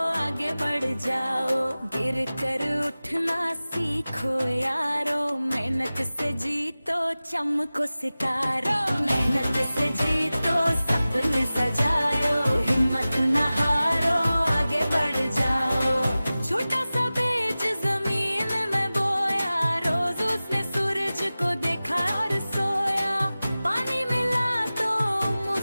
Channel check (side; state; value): both; inverted; correlation -0.97